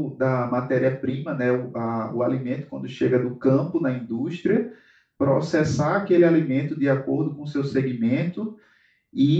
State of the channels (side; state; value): both; identical; correlation 1.00